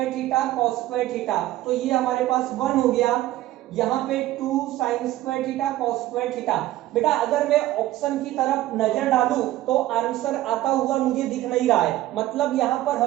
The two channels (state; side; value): quieter; left; 15.2 dB